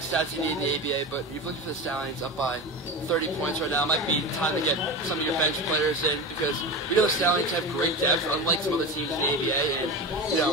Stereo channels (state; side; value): normal; both; correlation 0.25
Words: stats you need in the ABA, but you're looking for the Stallions up by 30 points right now. It might be time to get some of your bench players in, because we know the Stallions have great depth, unlike some other teams in the ABA, and, you